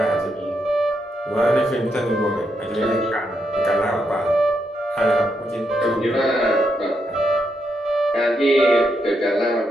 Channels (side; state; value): both; normal; correlation 0.81